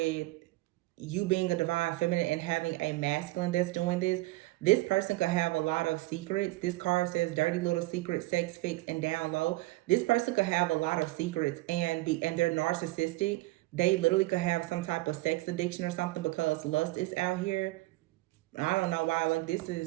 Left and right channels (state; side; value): quieter; left; 20.1 dB